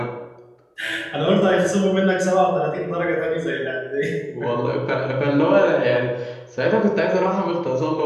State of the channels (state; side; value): identical; both; correlation 1.00